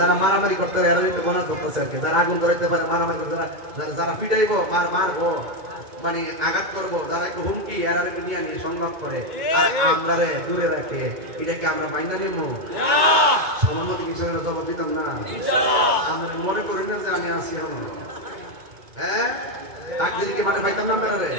মারামারি করতে পারে এরা একটু গণনা করতেছে আর কি, যারা আগুন ধরাইতে পারে, মারামারি করতে, যারা পিটাইবো, মারবো, মানে আঘাত করবো, যারা একটু হুমকি এরা একটু নিয়ে নিয়ে সংগ্রাম করে, আর আমরা দূরে রাখে, এটাকে আমরা মাইনা নেবো? আমার মতো কিষানের জবাব দিতাম না। আপনারা মনে করেন না যে আমি আসি আমার হ্যাঁ ডাক দিলে কি মাঠে পাইতাম না আপনারা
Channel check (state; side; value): late; left; 2.2 ms